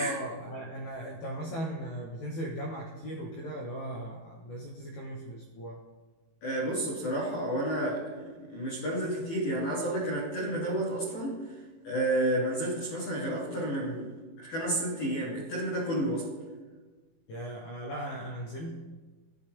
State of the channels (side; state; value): right; late; 18 ms